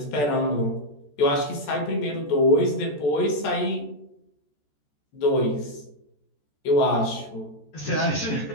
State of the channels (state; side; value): late; right; 14 ms